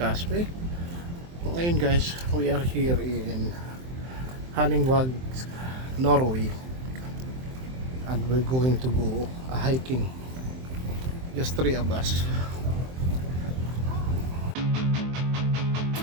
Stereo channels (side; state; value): left; late; 23 ms